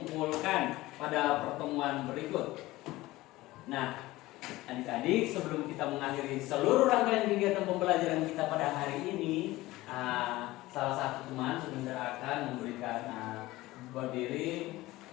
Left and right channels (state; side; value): quieter; right; 18.3 dB